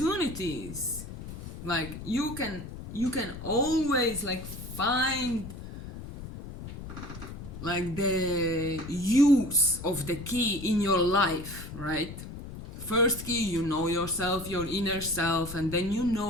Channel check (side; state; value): left; noise; rumble, 11 dB below the sound